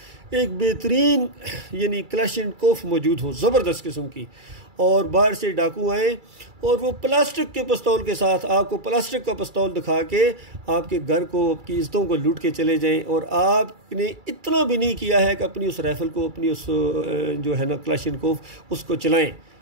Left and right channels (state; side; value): late; left; 2.3 ms